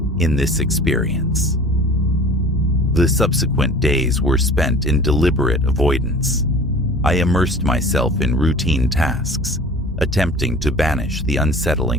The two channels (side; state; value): both; normal; correlation 0.43